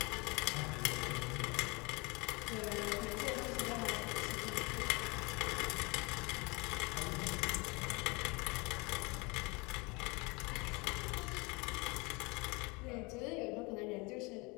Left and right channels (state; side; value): quieter; right; 27.3 dB